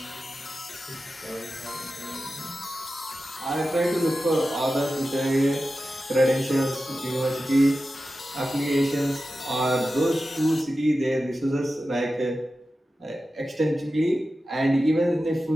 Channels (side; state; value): both; normal; correlation 0.93